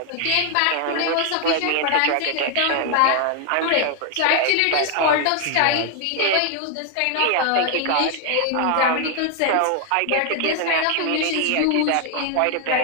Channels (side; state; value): both; different; correlation 0.00